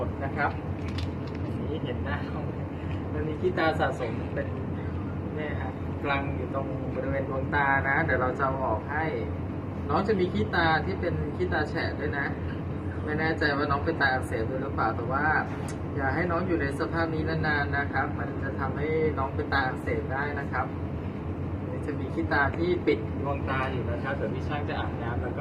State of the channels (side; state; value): both; identical; correlation 1.00